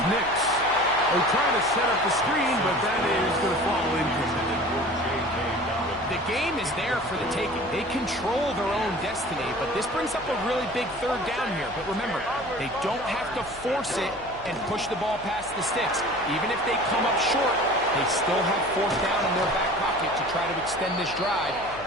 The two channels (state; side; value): noise; left; hum, 19 dB below the sound